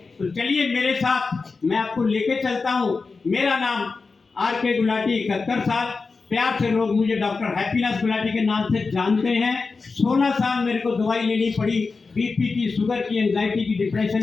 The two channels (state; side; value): quieter; right; 4.3 dB